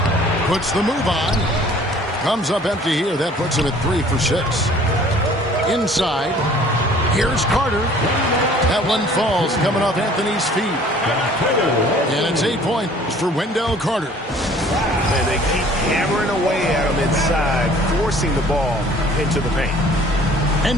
Puts the move on. Comes up empty here. That puts him at 3 for 6. Inside. Here's Carter. That one falls coming off Anthony's feet. And it's 8 points for Wendell Carter. And they keep hammering away at him inside, forcing the ball into the paint.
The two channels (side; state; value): both; normal; correlation 0.53